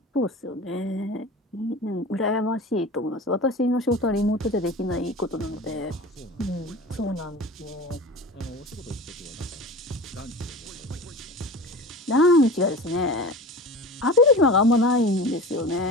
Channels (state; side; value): normal; both; correlation 0.34